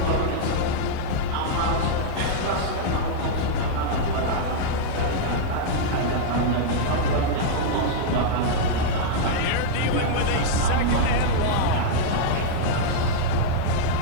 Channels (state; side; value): different; both; correlation -0.02